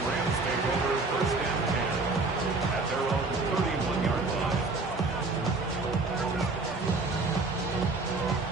Rams take over first and 10 at their own 31-yard line.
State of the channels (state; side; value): quieter; left; 3.6 dB